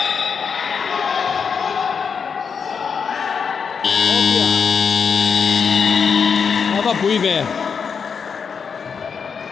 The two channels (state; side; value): quieter; right; 6.2 dB